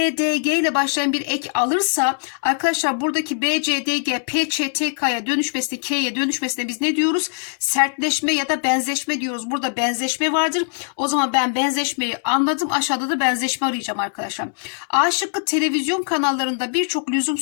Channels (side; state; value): right; silent; digital silence